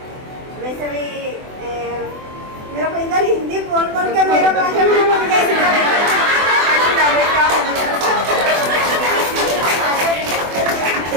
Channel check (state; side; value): late; left; 24 ms